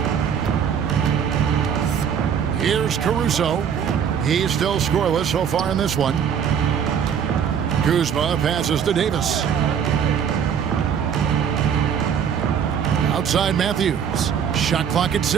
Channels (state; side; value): quieter; left; 7.9 dB